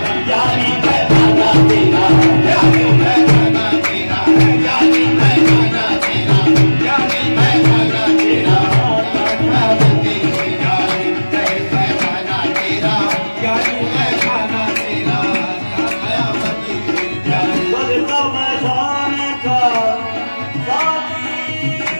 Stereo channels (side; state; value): both; inverted; correlation -1.00